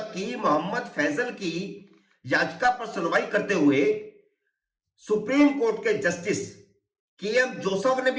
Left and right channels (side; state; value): both; identical; correlation 1.00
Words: कि मोहम्मद फैजल की याचिका पर सुनवाई करते हुए सुप्रीम कोर्ट के जस्टिस के.एम. जोसेफ ने